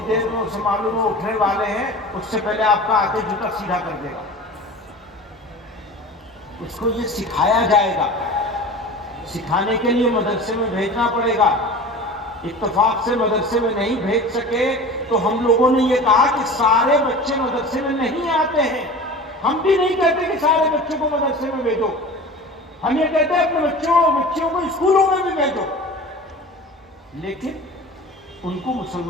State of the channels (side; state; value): both; normal; correlation 0.36